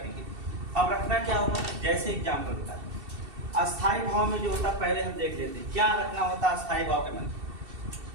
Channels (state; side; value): late; left; 2.7 ms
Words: अब रखना क्या होगा, जैसे एग्जाम में होता है अस्थाई भाव में जो होता है पहले हम देख लेते हैं क्या रखना होता है अस्थाई भाव के मन।